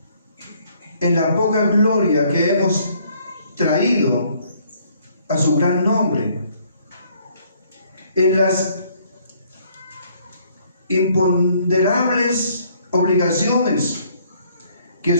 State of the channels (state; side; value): inverted; both; correlation -0.64